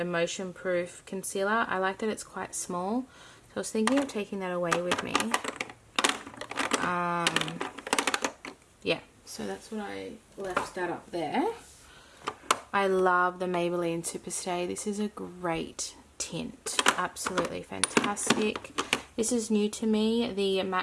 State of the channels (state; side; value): identical; both; correlation 1.00